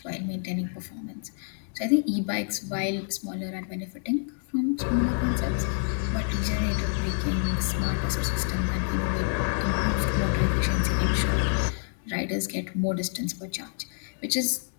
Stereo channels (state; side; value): silent; right; 60 dB below the other